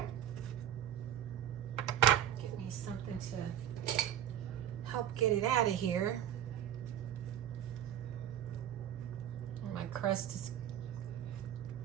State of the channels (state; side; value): quieter; left; 10.7 dB